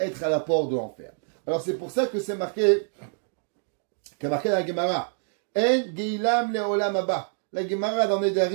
à la porte de l'enfer. Alors c'est pour ça que c'est marqué dans la Gemara, En Geilam Leolam Abba. La Gemara dans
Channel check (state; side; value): silent; left; digital silence